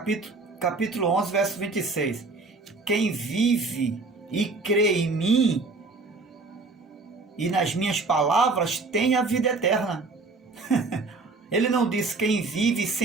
11, verso 26. Quem vive e crê em mim e nas minhas palavras tem a vida eterna. Ele não diz quem vive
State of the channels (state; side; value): quieter; left; 3.7 dB